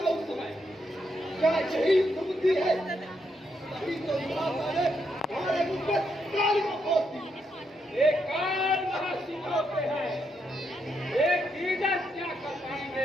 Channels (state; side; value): normal; both; correlation 0.79